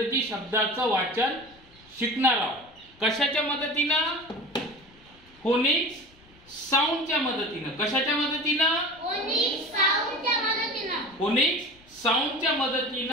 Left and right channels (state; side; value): noise; left; rumble, 27 dB below the sound